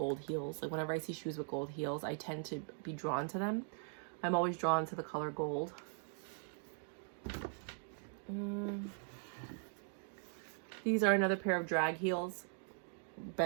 heels. Like whenever I see shoes with gold heels, I tend to be drawn to them. I'm always drawn to the color gold. These are another pair of drag heels,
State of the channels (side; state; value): left; silent; 51 dB below the other